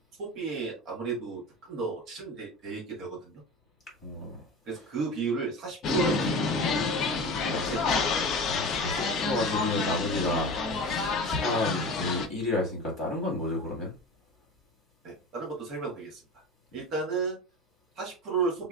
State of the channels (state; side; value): normal; both; correlation 0.31